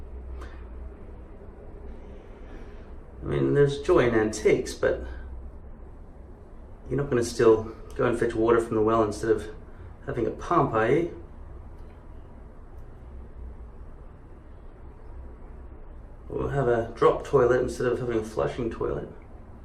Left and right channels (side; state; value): both; identical; correlation 1.00